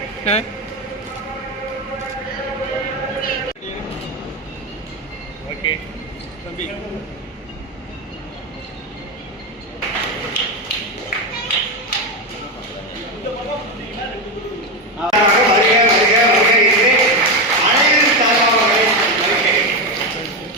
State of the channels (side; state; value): both; normal; correlation 0.12